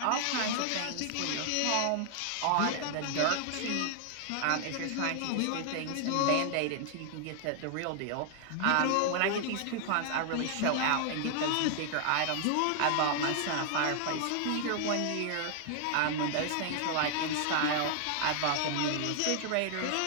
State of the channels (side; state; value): both; different; correlation 0.00